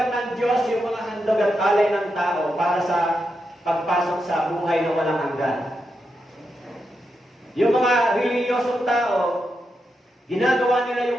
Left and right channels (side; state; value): both; normal; correlation 0.85